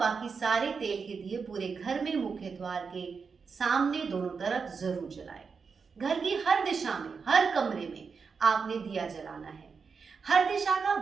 बाकी सारे तेल के दिए पूरे घर में मुख्य द्वार के सामने दोनों तरफ जरूर जलाएं। घर की हर दिशा में, हर कमरे में आपने दिया जलाना है। हर दिशा का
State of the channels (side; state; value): left; quieter; 5.4 dB